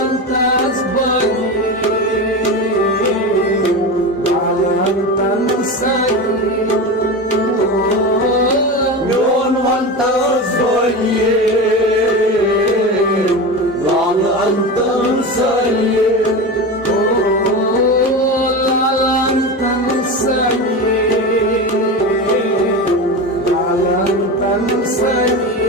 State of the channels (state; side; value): normal; both; correlation 0.24